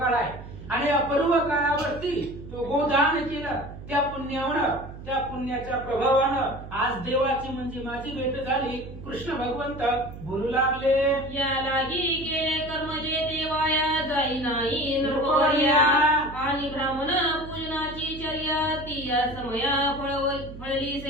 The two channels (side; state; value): right; noise; hum, 13 dB below the sound